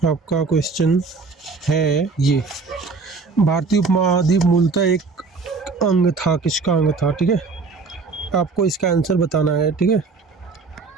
आपका क्वेश्चन है ये: भारतीय उपमहाद्वीप मूलतः एक अंग था, किसका अंग था, ठीक है। आपको इसका आंसर बताना है, ठीक है।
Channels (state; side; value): quieter; left; 4.4 dB